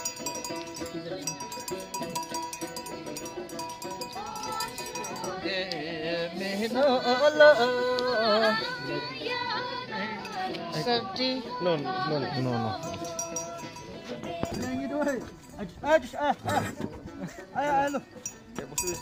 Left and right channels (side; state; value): both; identical; correlation 1.00